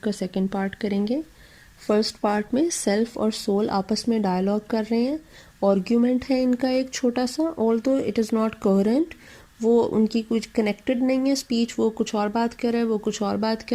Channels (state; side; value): identical; both; correlation 1.00